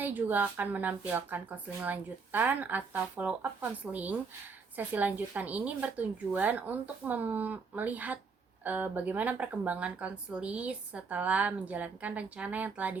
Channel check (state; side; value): quieter; left; 4.9 dB